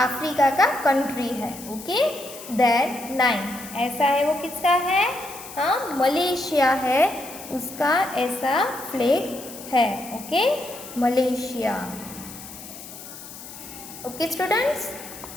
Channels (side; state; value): left; noise; hiss, 14 dB below the sound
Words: का कंट्री है. ओके, देन नाइन्थ, ऐसा है वो किसका है. हाँ, मलेशिया है, उसका ऐसा फ्लैग है. Okay, Malaysia. Okay students,